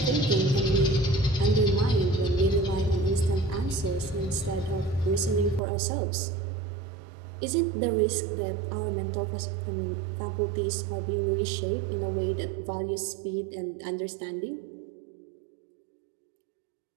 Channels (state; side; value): drops out; left; at 5.6 s